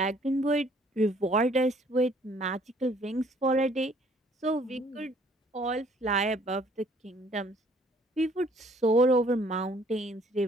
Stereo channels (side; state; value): both; normal; correlation 0.60